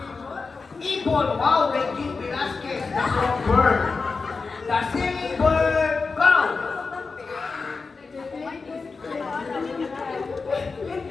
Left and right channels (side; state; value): right; quieter; 4.4 dB